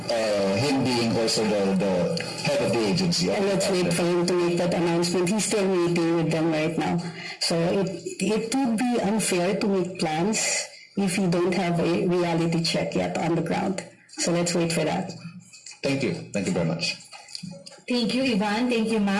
him being also the head of the agency? And let's wait for him to make that announcement. He's still meeting with them right now. So it would be unfair to make plans if you don't have a reality check yet on the ground. So let's wait for that. Thank you. Thank you very much. Thank you, Ivan. Thank you,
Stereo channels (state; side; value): identical; both; correlation 1.00